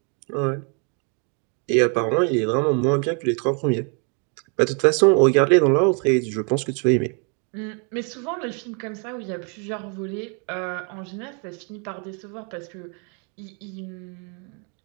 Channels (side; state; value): left; quieter; 37.6 dB